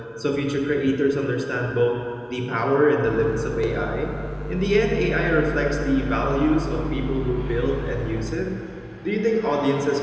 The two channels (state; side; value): identical; both; correlation 1.00